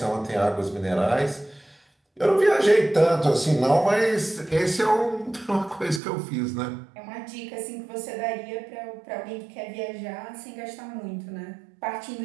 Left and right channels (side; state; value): left; drops out; at 6.0 s